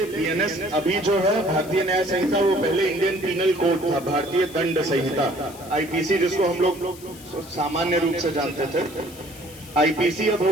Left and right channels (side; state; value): left; noise; hiss, 19 dB below the sound